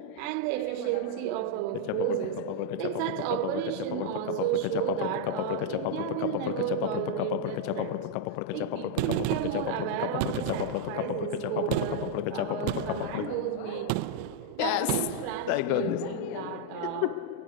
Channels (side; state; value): both; different; correlation 0.00